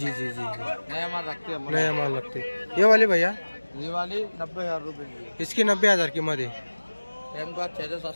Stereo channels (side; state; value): both; inverted; correlation -1.00